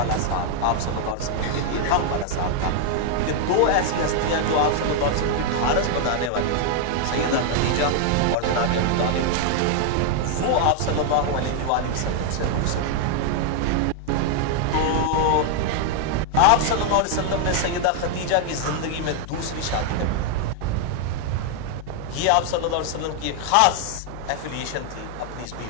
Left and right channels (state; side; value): different; both; correlation 0.00